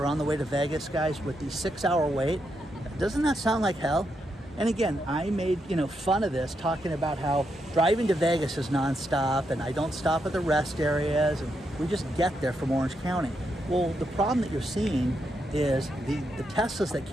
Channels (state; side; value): normal; both; correlation 0.82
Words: on the way to Vegas, guys, with the 6-hour wait. Doesn't that sound like hell? And again, I made, you know, fun of this, talking about how driving to Vegas is nonstop and I don't stop at the rest areas and we just get there from Orange County. Well, the problem that you're seeing is the Teslas that